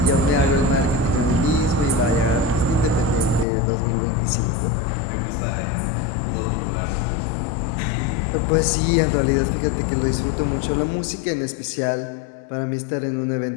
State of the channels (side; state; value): right; drops out; at 3.5 s